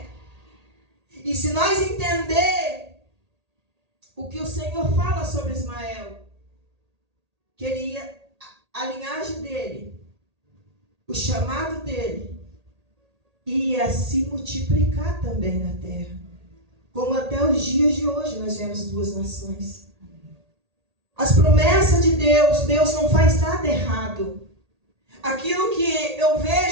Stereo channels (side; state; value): left; late; 1.8 ms